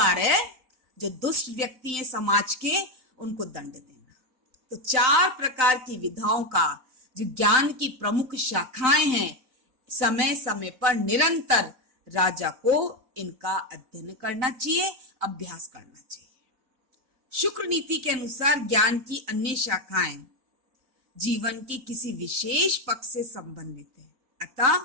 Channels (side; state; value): left; late; 3.9 ms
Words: है जो दुष्ट व्यक्ति हैं समाज के, उनको दंड देना। तो चार प्रकार की विधाओं का जो ज्ञान की प्रमुख शाखाएं हैं, समय समय पर निरंतर राजा को इनका अध्ययन करना चाहिए, अभ्यास करना चाहिए। शुक्र नीति के अनुसार ज्ञान की अन्य शाखाएं जीवन के किसी विशेष पक्ष से संबंधित है। अतः